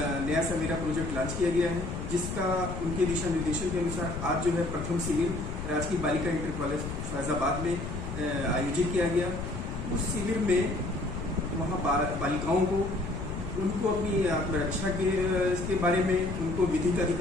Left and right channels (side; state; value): left; noise; rumble, 6 dB below the sound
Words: नया सवेरा प्रोजेक्ट लॉन्च किया गया है, जिसका उनके दिशा निर्देशन के अनुसार आज जो है प्रथम शिविर राजकीय बालिका इंटर कॉलेज फैजाबाद में आयोजित किया गया। उस शिविर में वहाँ बालिकाओं को, उनको अपनी आत्मरक्षा के बारे में, उनको विधिक